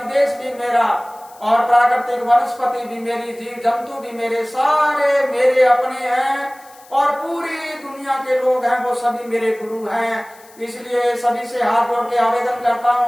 भी मेरा, और प्राकृतिक वनस्पति भी मेरी, जीव जंतु भी मेरे, सारे मेरे अपने हैं, और पूरी दुनिया के लोग हैं वो सभी मेरे गुरु हैं। इसलिए सभी से हाथ जोड़ के आवेदन करता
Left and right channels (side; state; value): left; noise; hiss, 25 dB below the sound